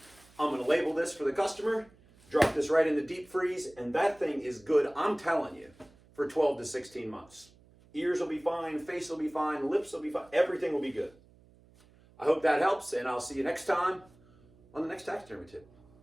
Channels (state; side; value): noise; right; hum, 28 dB below the sound